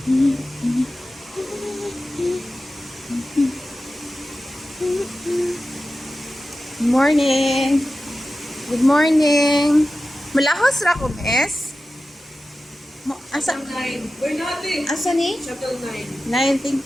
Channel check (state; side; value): normal; both; correlation 0.94